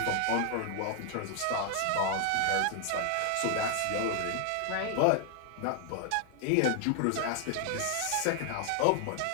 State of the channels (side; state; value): both; different; correlation 0.00